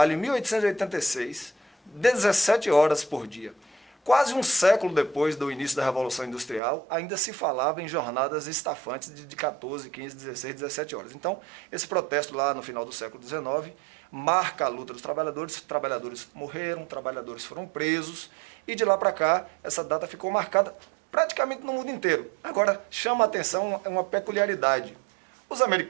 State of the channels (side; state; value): left; drops out; at 6.6 s